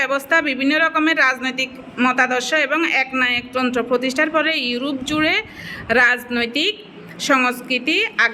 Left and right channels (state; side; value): identical; both; correlation 1.00